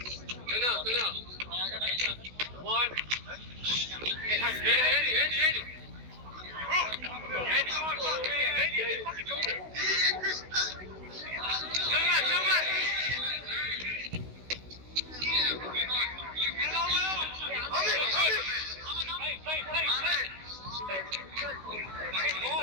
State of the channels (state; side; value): late; left; 16 ms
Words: Go now. One. Ready.